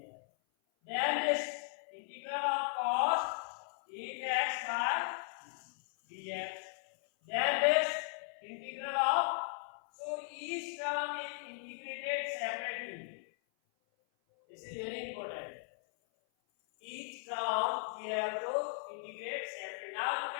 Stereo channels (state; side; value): silent; right; 53 dB below the other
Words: Then this integral of cos 8x by dx. Then this integral of, so each term is integrated separately. This is very important. Each term we have to integrate separately. Now you